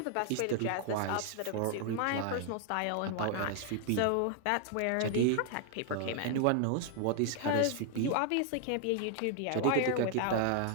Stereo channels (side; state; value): both; different; correlation 0.00